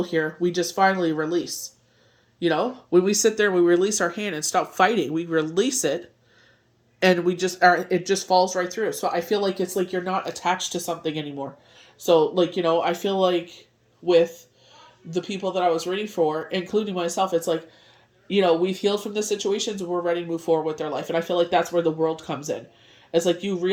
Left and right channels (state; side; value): identical; both; correlation 1.00